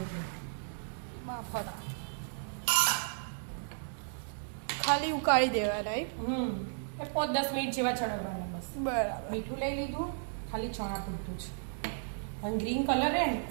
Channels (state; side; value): silent; left; digital silence